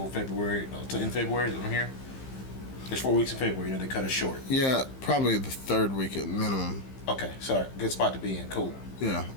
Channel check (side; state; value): right; late; 15 ms